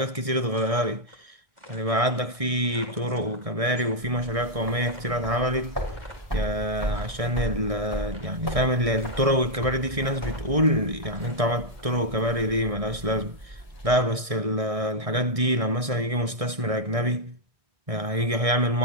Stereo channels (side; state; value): left; late; 1.6 ms